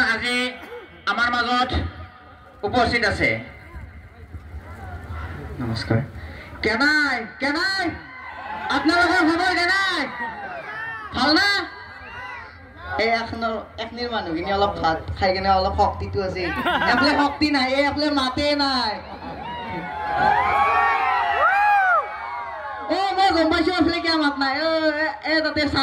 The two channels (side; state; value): both; identical; correlation 1.00